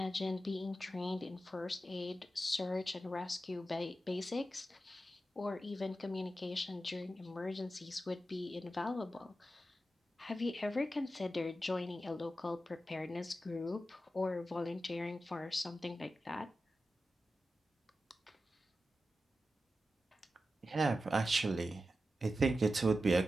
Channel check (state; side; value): normal; both; correlation 0.91